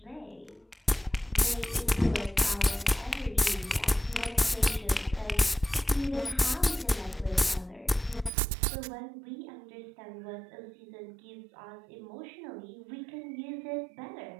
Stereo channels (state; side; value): drops out; left; at 8.3 s